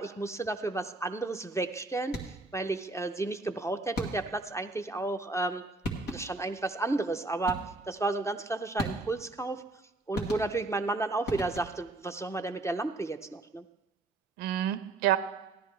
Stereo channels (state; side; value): quieter; left; 3.1 dB